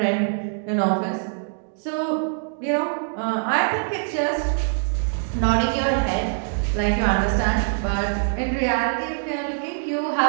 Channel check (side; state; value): left; silent; digital silence